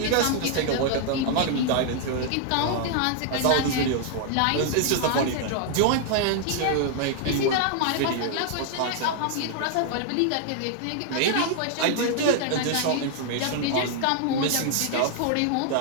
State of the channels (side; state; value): both; different; correlation 0.00